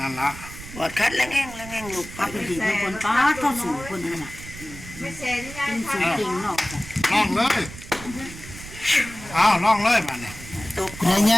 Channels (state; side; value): noise; right; rumble, 14 dB below the sound